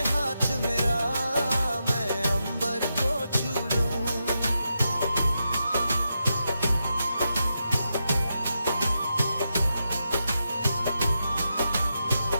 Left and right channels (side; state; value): both; inverted; correlation -0.86